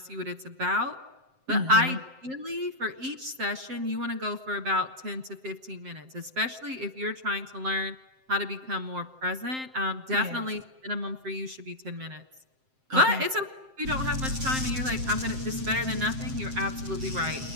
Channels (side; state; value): left; late; 7.7 ms